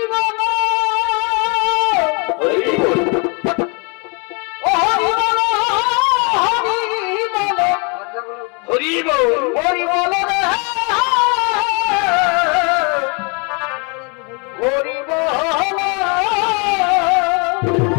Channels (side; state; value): right; quieter; 33.8 dB